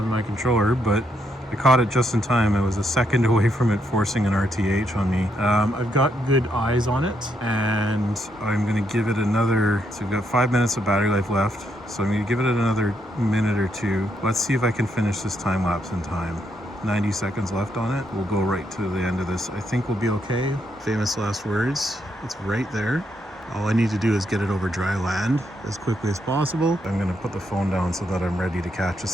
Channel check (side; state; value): both; normal; correlation 0.77